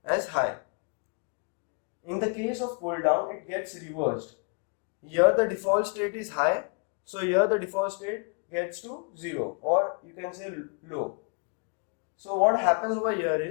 as high. In the case of pull-down, it gets reversed. Here the default state is high, so here the default state gets to 0, or you can say low. So what happens over here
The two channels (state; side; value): quieter; right; 35.4 dB